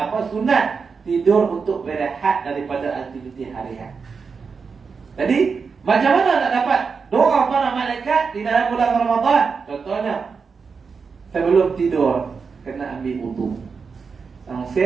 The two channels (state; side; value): quieter; left; 5.3 dB